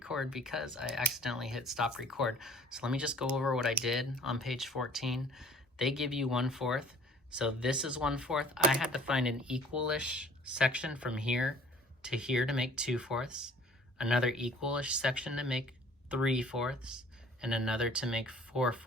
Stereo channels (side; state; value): both; normal; correlation 0.52